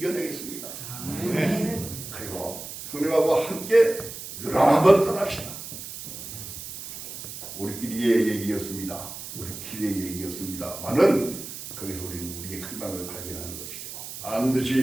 그리고 형님하고 함께 유랑 한번 떠납시다. 우리끼리의 얘기였습니다. 우리끼리의 얘기였습니다만은 거기서 우리는 우리의 희망을 발견하는 것이죠.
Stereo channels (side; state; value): right; noise; hiss, 10 dB below the sound